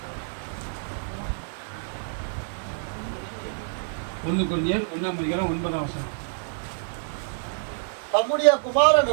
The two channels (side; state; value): left; silent; digital silence